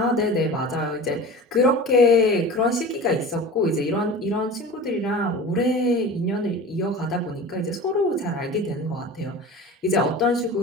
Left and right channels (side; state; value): both; normal; correlation 0.35